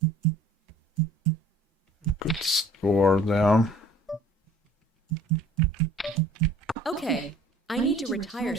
good score there. Okay, I need to retire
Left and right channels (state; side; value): normal; both; correlation 0.52